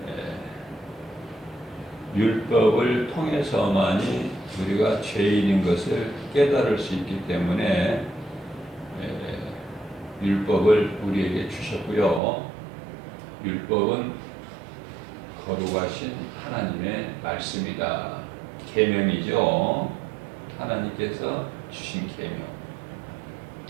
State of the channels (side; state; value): left; drops out; at 12.2 s